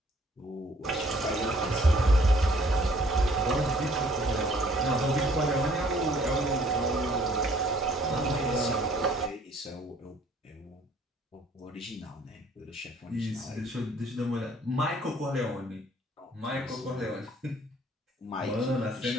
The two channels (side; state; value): both; normal; correlation 0.59